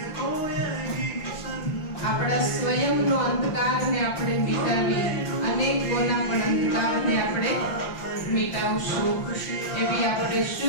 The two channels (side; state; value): right; late; 5.8 ms